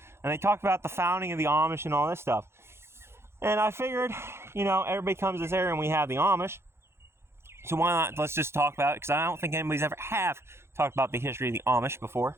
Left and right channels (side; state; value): left; late; 0.12 ms